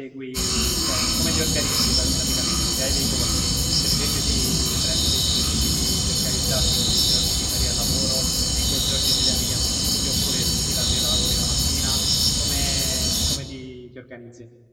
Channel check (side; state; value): both; identical; correlation 1.00